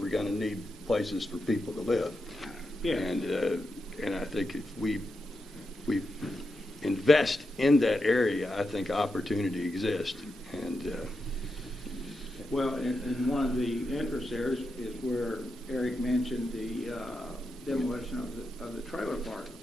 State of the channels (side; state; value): both; normal; correlation 0.87